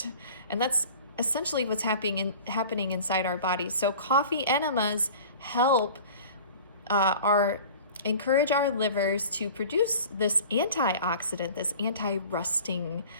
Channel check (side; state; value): both; inverted; correlation -0.42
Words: and that's essentially what's happening inside our bodies. So coffee enemas help encourage our livers to produce this antioxidant, this anti-rusting